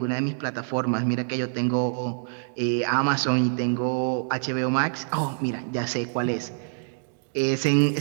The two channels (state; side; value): silent; left; digital silence